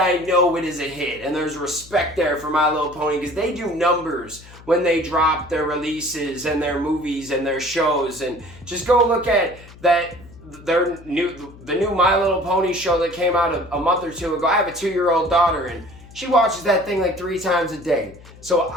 know it is a hit. And there's respect there for My Little Pony because they do numbers when they drop their releases and their movies and their shows. And just go look at that, the new My Little Pony show that came out a month or two ago. I have a 2-year-old daughter, and she watches that thing like 3 times a day. So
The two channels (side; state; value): left; noise; hum, 20 dB below the sound